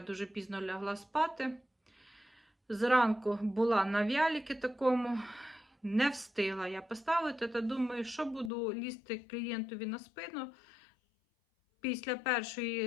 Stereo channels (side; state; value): right; drops out; at 8.5 s